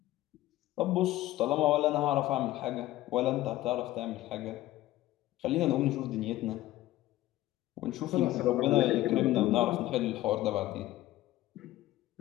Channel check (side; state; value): right; quieter; 15.7 dB